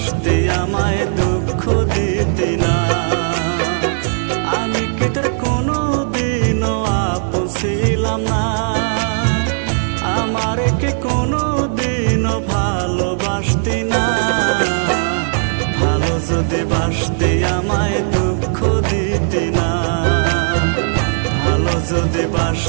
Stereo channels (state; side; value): silent; left; digital silence